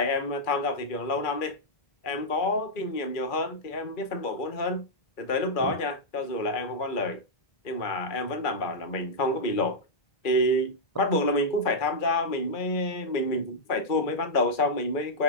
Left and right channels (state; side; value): late; right; 2.3 ms